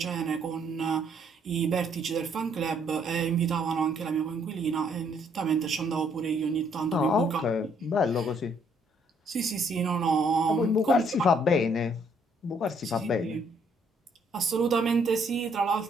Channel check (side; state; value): both; normal; correlation 0.67